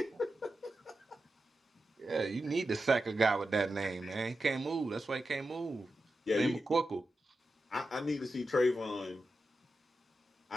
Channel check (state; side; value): normal; both; correlation 0.90